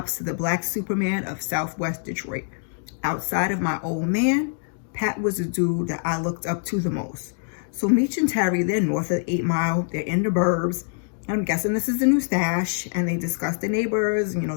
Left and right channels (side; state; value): right; silent; digital silence